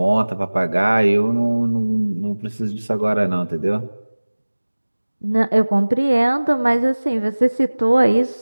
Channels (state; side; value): inverted; both; correlation -1.00